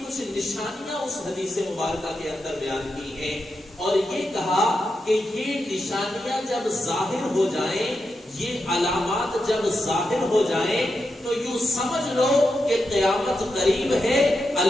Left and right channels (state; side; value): normal; both; correlation 0.87